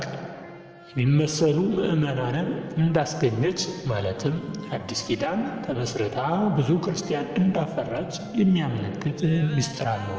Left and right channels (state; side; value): identical; both; correlation 1.00